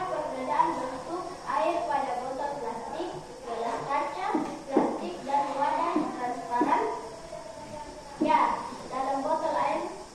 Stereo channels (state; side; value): identical; both; correlation 1.00